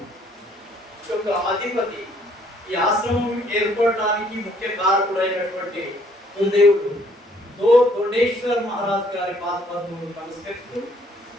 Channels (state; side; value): normal; both; correlation 0.63